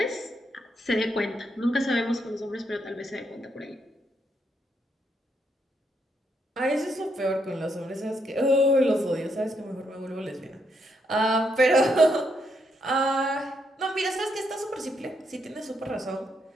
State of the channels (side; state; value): both; normal; correlation 0.77